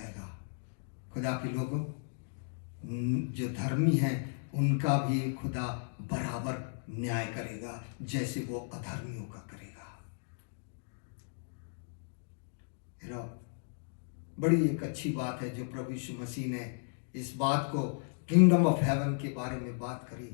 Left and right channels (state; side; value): silent; right; digital silence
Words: खुदा के लोगों, जो धर्मी हैं उनका भी खुदा बराबर न्याय करेगा जैसे वो अधर्मियों का करेगा। बड़ी एक अच्छी बात है जो प्रभु यीशु मसीह ने इस बात को किंगडम ऑफ हेवन के बारे में बात करी।